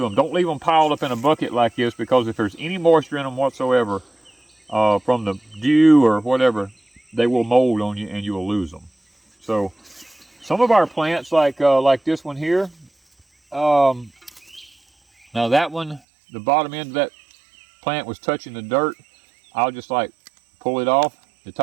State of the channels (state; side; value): drops out; left; at 16.0 s